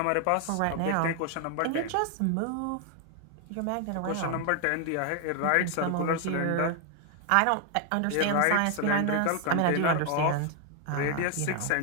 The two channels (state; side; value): different; both; correlation 0.01